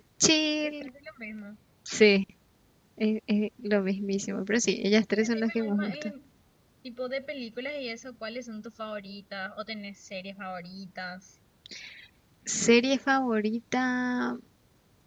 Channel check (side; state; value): both; identical; correlation 1.00